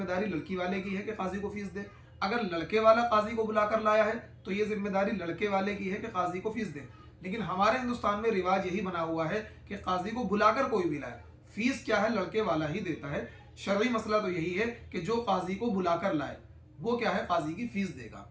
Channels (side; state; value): both; identical; correlation 1.00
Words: लड़की वाले की है कि काजी को फ़ीस दे। अगर लड़के वाला काजी को बुलाकर लाया है तो ये जिम्मेदारी लड़के वाले की है कि काजी को फ़ीस दे। लेकिन हमारे हिंदुस्तान में रिवाज यही बना हुआ है कि काजी को बुलाकर कोई भी लाए, फ़ीस क्या है, लड़के वाला ही देता है। शरई मसला तो यही है कि जो काजी को बुलाकर लाए वो क्या है, काजी की फ़ीस देगा।